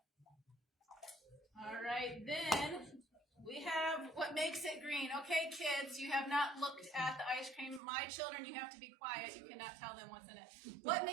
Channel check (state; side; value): drops out; left; at 7.8 s